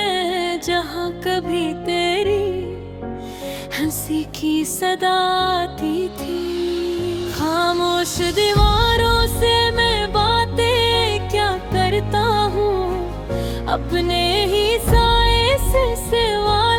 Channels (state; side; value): identical; both; correlation 1.00